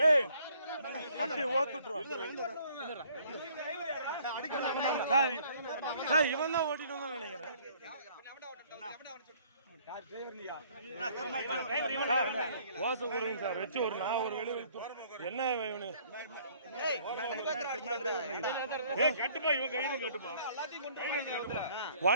அப்படி ஓத்துட்டுருவான். இவன் தான் ஓட்டிட்டு வந்தான் நினைக்கிறேன். ஓசை கொடுங்க சார் வச்சு ஒரு நான் ஒரு வெளியே என்ன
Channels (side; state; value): both; inverted; correlation -0.59